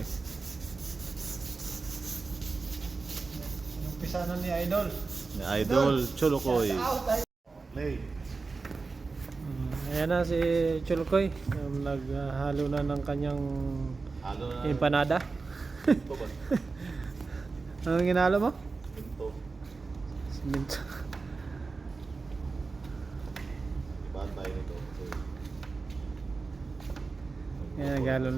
Yung pisanan ni Idol. Ni Idol Chulukoy. Shout out, Play. Ayan na si Chulukoy. Naghalo na ng kanyang Halo na. empanada. Ito ba? Anong ginalo mo? Ito. Siminto. Ibaan tayo nito. Ayan, naghalo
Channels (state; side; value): quieter; left; 4.1 dB